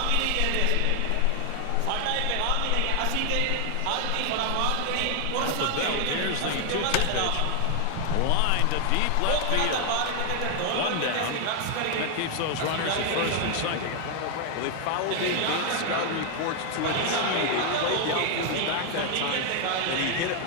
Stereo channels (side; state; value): both; different; correlation 0.00